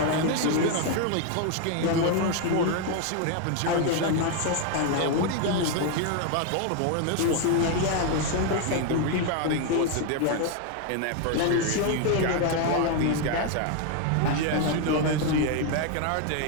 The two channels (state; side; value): different; both; correlation 0.01